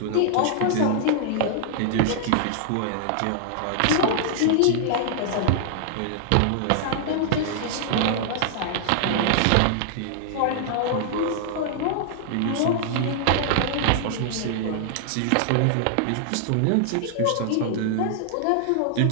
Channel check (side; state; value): both; different; correlation -0.01